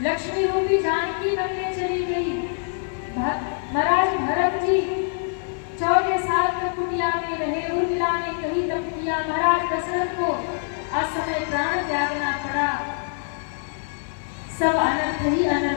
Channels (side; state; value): right; silent; 62 dB below the other